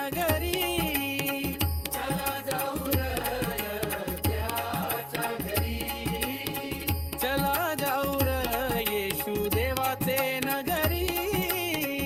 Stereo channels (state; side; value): identical; both; correlation 1.00